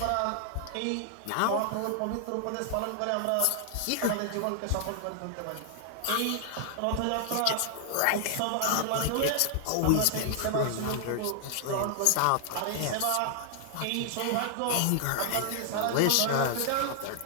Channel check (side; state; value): both; different; correlation 0.00